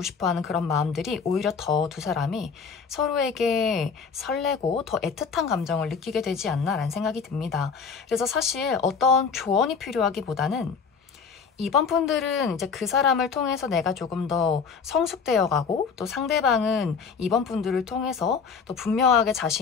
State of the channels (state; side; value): quieter; right; 5.8 dB